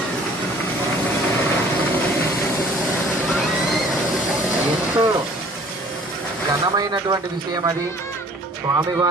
ఎంతో ఘనమైనటువంటి విషయం అది.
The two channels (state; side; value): normal; both; correlation 0.52